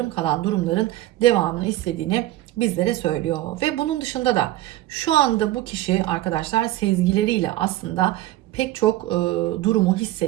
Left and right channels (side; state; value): left; quieter; 15.7 dB